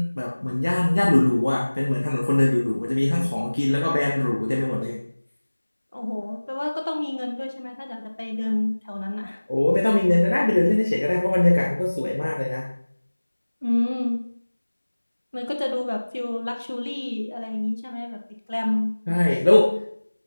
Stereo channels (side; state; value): both; inverted; correlation -1.00